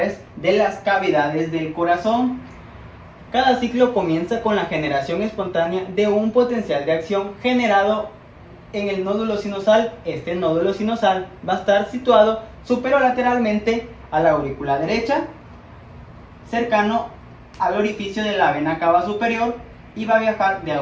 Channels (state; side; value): identical; both; correlation 1.00